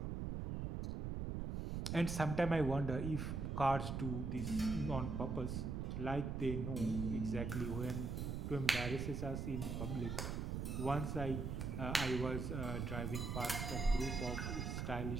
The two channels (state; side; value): noise; right; rumble, 2 dB below the sound